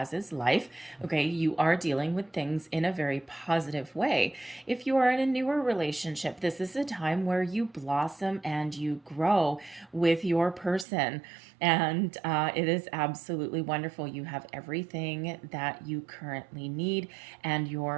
is life. Okay, you are dealing with things in a very positive way. If you are in a newer relationship, this is a time where you blossom and you grow with your person. And it is absolutely wonderful. You have everything that you currently need, and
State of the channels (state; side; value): drops out; left; at 10.9 s